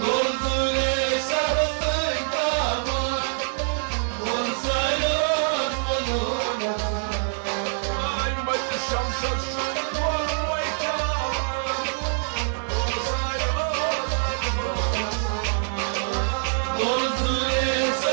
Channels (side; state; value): left; silent; 61 dB below the other